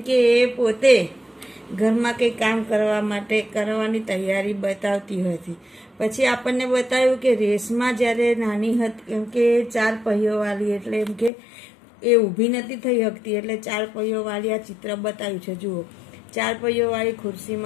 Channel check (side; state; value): right; drops out; at 11.3 s